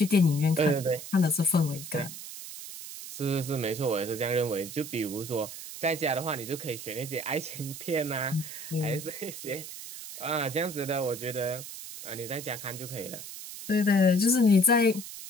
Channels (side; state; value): right; noise; hiss, 11 dB below the sound